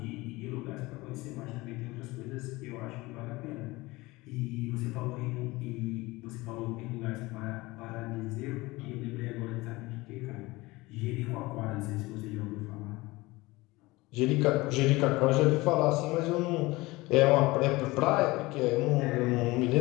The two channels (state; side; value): quieter; right; 21.3 dB